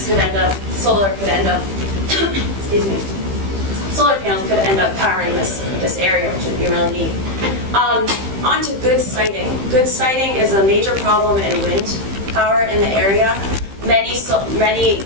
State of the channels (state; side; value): late; left; 15 ms